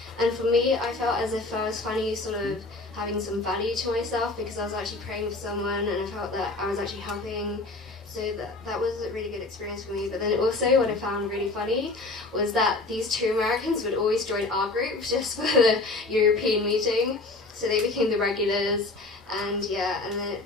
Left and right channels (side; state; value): right; quieter; 3.2 dB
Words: And for me, I felt as if I was finally sort of having some value to myself, because I was actually praying for someone and I felt that I was actually helping. So that was a really good experience for me. But then also what I found really funny was that these 2 Americans would always join our group just for the European meeting. So they became the regulars, and yeah, and then it